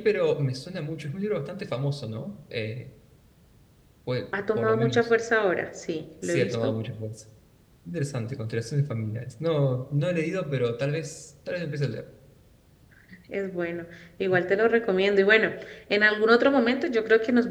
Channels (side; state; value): both; identical; correlation 1.00